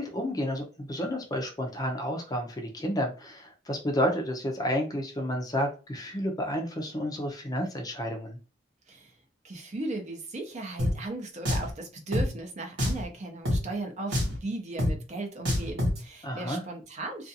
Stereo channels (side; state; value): both; normal; correlation 0.65